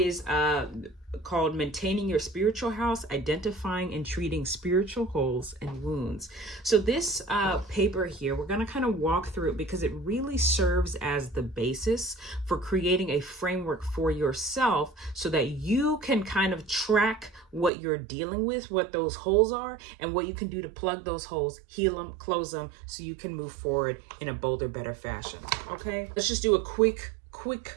called Maintaining Your Spiritual House, Identifying and Treating Spiritual Holes and Wounds. So this paper here, we're going to kind of walk through it because it really serves as the basis for creating a framework for yourself so that you can kind of track what you're dealing with, what those holes are, and what you can do to plug those holes, heal them, close them, so you can move forward in a bolder, better fashion. Okay, let's just do a quick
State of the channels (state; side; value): drops out; left; at 17.7 s